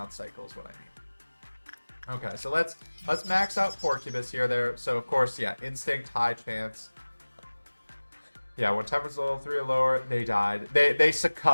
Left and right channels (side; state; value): both; inverted; correlation -1.00